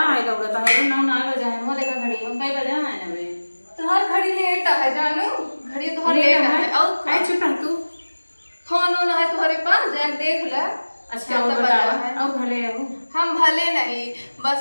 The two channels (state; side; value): inverted; both; correlation -1.00